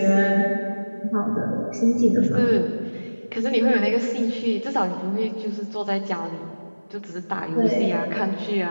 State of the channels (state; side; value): inverted; both; correlation -1.00